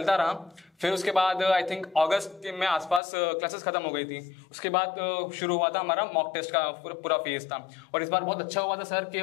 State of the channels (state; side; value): drops out; right; at 3.0 s